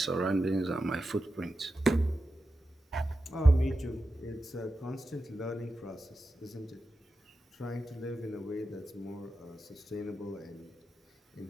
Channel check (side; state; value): both; normal; correlation 0.90